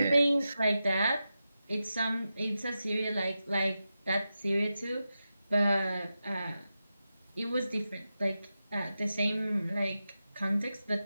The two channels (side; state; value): both; inverted; correlation -0.91